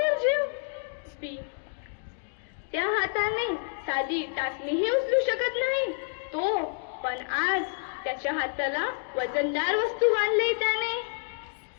त्या हाताने साधी टाचणीही उचलू शकत नाही तो, पण आज त्याच्या हाताला वजनदार वस्तू बांधली त्याने.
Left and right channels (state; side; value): silent; right; digital silence